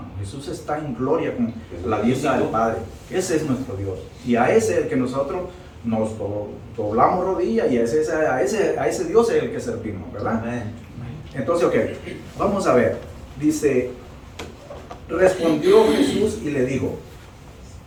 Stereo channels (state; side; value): identical; both; correlation 1.00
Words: Jesús está en gloria con la diestra del Padre. Ese es nuestro Dios. Y a ese es el que nosotros nos doblamos rodillas, y a ese Dios es el que servimos, ¿verdad? Amén. Entonces, ok, vamos a ver. Dice, respondió Jesús y le dijo,